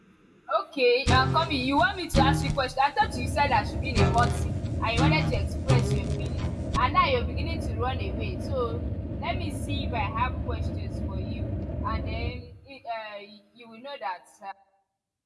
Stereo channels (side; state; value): both; identical; correlation 1.00